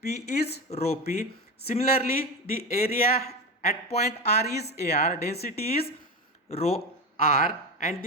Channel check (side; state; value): both; normal; correlation 0.21